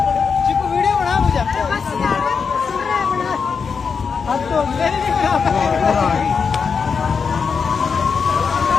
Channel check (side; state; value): right; quieter; 5.7 dB